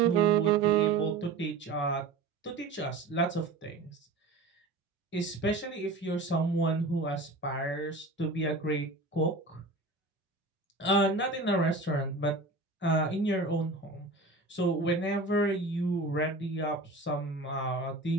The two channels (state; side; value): quieter; left; 3.3 dB